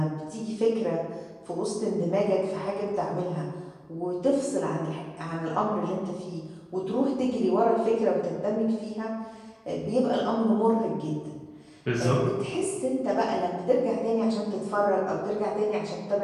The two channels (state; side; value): identical; both; correlation 1.00